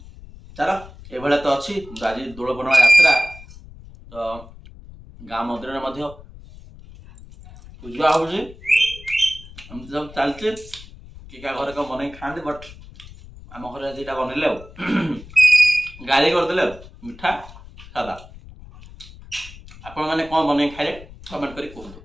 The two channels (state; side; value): noise; left; rumble, 18 dB below the sound